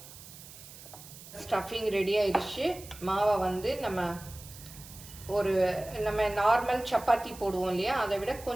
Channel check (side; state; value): right; noise; hiss, 17 dB below the sound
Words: ஸ்டஃபிங் ரெடி ஆயிடுச்சு. மாவை நம்ம ஒரு நம்ம நார்மல் சப்பாத்தி போடுவோம் இல்லையா, அதை விட